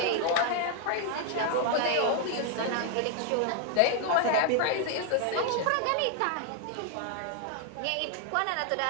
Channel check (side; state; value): both; different; correlation 0.01